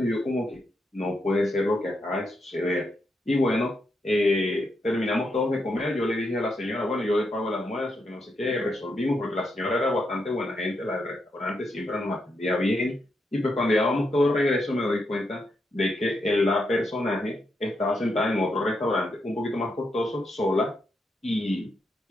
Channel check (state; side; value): normal; both; correlation 0.82